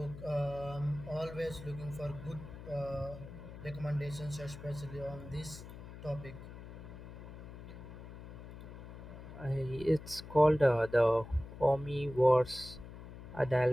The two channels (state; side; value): noise; left; hum, 13 dB below the sound